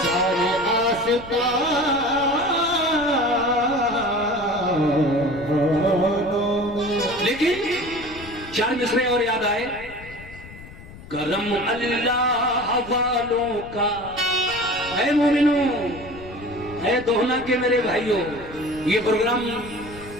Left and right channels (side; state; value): left; noise; rumble, 17 dB below the sound